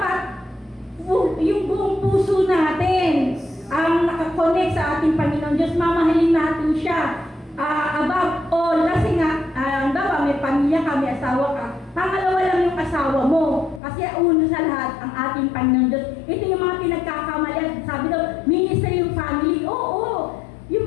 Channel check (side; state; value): right; drops out; at 13.8 s